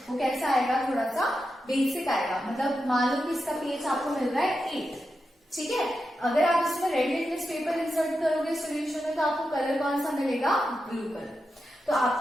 वो कैसा आएगा, थोड़ा सा बेसिक आएगा। मतलब मान लो कि इसका पीएच आपको मिल रहा है 8, ठीक है। अगर आप इसमें रेड लिटमस पेपर इंसर्ट करोगे सोल्यूशन में तो आपको कलर कौन सा मिलेगा, ब्लू कलर। तो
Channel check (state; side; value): normal; both; correlation 0.89